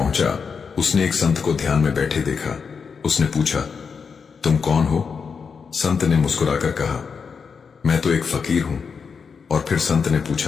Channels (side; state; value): right; quieter; 5.8 dB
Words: उसने एक संत को ध्यान में बैठे देखा। उसने पूछा, तुम कौन हो? संत ने मुस्कुराकर कहा, मैं तो एक फकीर हूं। और फिर संत ने